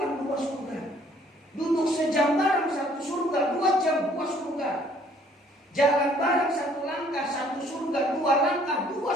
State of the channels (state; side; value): normal; both; correlation 0.60